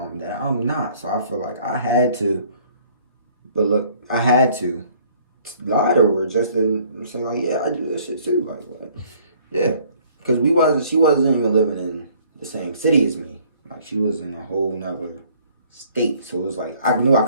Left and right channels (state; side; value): inverted; both; correlation -0.58